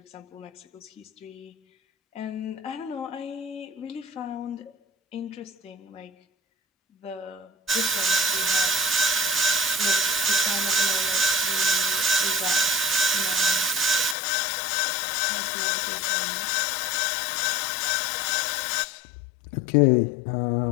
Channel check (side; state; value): right; drops out; at 14.2 s